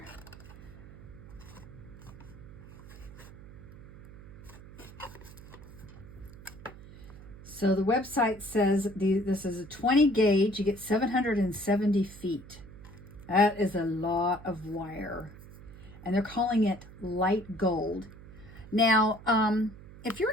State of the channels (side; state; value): right; noise; hum, 17 dB below the sound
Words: So the website says this is a 20 gauge. You get 770 feet. That is a lot of wire. And they're calling it light gold. Now, if you're